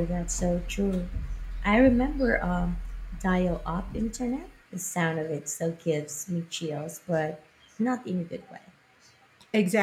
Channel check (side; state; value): both; identical; correlation 1.00